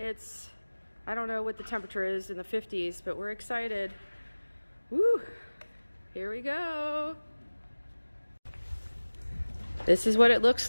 I don't know what the temperature is in the 50s, but we're excited. Woo! Here we go. This is what it looks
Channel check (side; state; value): both; inverted; correlation -1.00